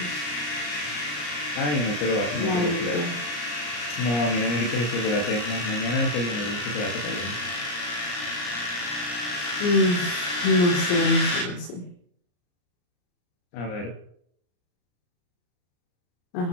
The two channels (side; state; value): right; late; 34 ms